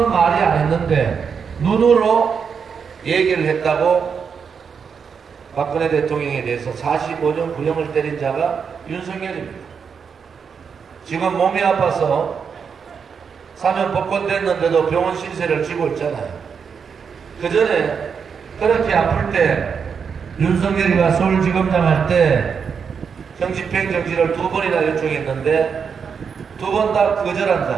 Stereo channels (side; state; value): left; quieter; 6.4 dB